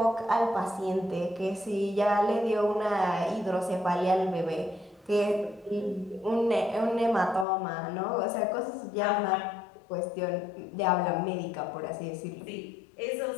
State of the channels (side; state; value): right; drops out; at 7.5 s